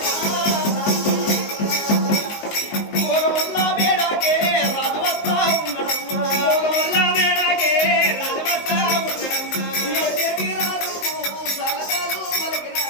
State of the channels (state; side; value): late; right; 19 ms